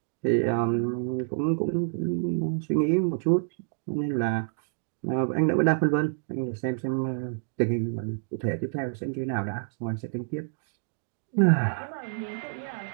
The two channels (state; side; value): silent; left; digital silence